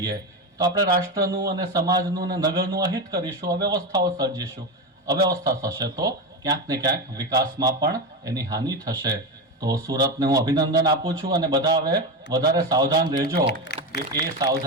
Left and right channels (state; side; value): normal; both; correlation 0.17